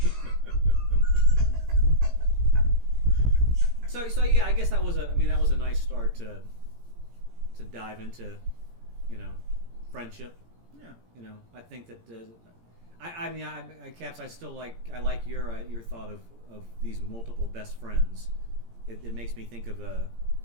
So yeah, I guess that was a nice start to dive into, friendship. Yeah. I think that Caps, I still like your thought of these multiple best friends. It makes me think of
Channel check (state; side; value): late; left; 17 ms